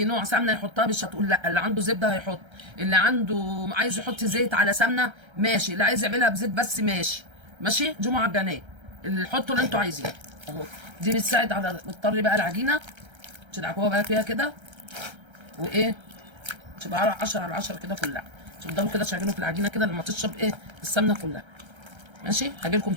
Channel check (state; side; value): late; left; 1.3 ms